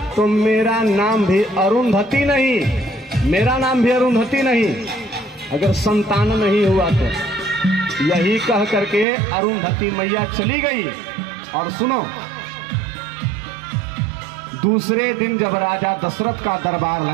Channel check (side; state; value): left; drops out; at 9.1 s